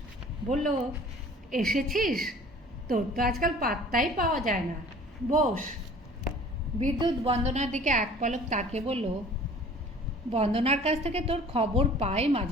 বলল, এসেছিস? তোর তো আজকাল পাত্তাই পাওয়া যায় না, বস। বিদ্যুৎ বন্দনার দিকে এক পলক তাকিয়ে বলল, বন্দনার কাছ থেকে তোর খবর পাই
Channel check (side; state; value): both; normal; correlation 0.48